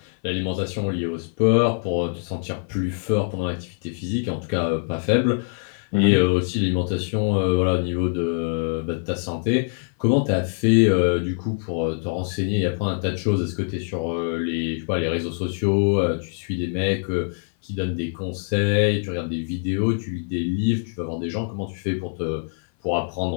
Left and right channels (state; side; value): silent; right; 57 dB below the other